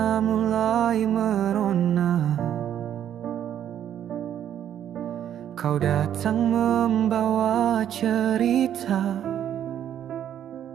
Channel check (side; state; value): left; quieter; 10.2 dB